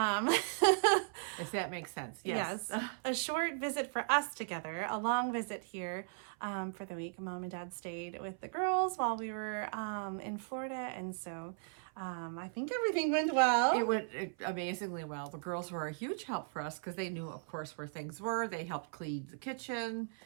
that makes sense. Yes. Yes. A short visit for us together, a long visit here for the week. Mom and Dad stayed with the girls while we were in Florida, and so I think everything went well. It went amazingly well. The girls were a huge help for us because they knew, of course, where things were. They helped clean the kitchen,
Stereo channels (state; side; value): silent; left; 53 dB below the other